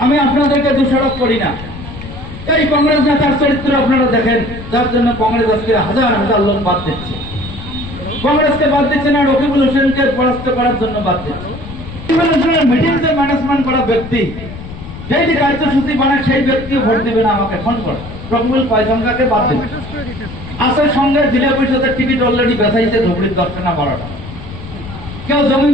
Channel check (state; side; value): noise; left; rumble, 12 dB below the sound